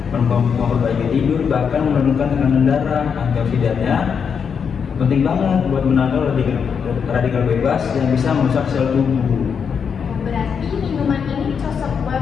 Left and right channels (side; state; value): right; quieter; 6.7 dB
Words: memperbaiki tidur, bahkan menurunkan tekanan darah. Antioksidannya penting banget buat menangkal radikal bebas yang bisa merusak sel tubuh. berarti minuman ini cocok